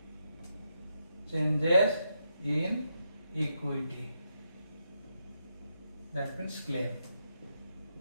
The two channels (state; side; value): inverted; both; correlation -0.82